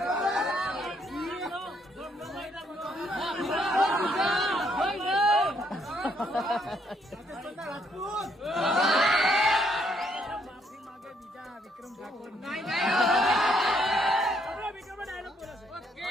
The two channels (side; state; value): both; normal; correlation 0.71